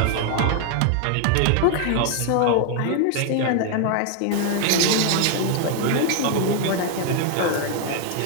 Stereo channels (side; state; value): both; different; correlation 0.00